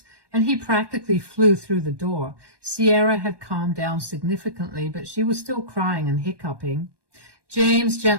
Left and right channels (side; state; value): left; late; 1.2 ms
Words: and he practically flew through the door. Sierra had calmed down significantly, but she was still crying and hiccuping. James